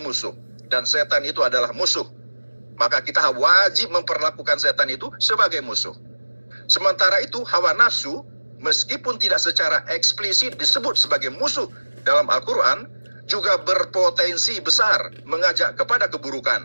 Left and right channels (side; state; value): both; inverted; correlation -1.00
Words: Dan setan itu adalah musuh. Maka kita wajib memperlakukan setan itu sebagai musuh. Sementara itu, hawa nafsu, meskipun tidak secara eksplisit disebut sebagai musuh dalam Al-Quran, juga berpotensi besar mengajak kepada